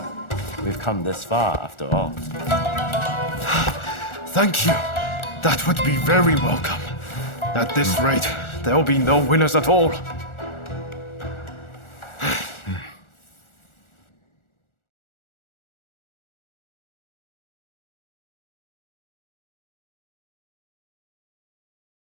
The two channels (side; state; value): right; late; 1.4 ms